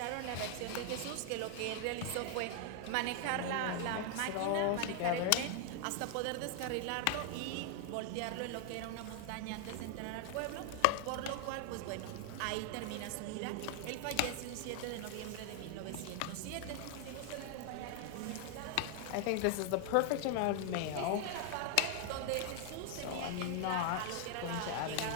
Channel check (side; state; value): both; different; correlation 0.00